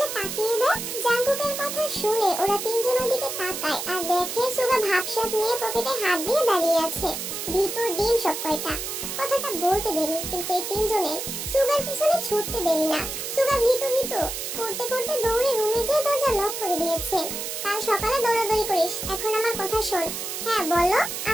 তাকিয়ে দেখ। জাঙ্কুকের কথা শুনে ওরা তিনজন ওদিকে তাকায় আর দেখে সুগা ভাবসাব নিয়ে পকেটে হাত দিয়ে দাঁড়িয়ে আছে। ভিতর ডিম সব কয়টা। কথাটা বলতে দেরি, কিন্তু এই তিনজনের সুগার পিছনে ছুটতে দেরি না। সুগা ভীতু ভীতু করতে করতে দৌড়ে রুমে যেয়ে দরজা লক করে দিয়েছে। কাল সকালে দৌড়াদৌড়ি করিস, এখন আমার কথা শোন। হ্যাঁ বলো।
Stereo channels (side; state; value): right; noise; hiss, 5 dB below the sound